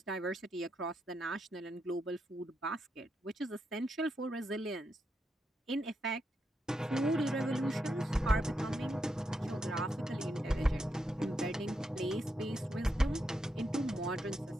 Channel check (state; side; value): normal; both; correlation 0.83